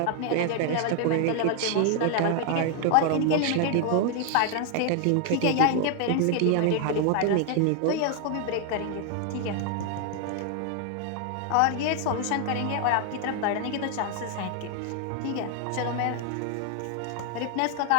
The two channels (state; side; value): different; both; correlation 0.00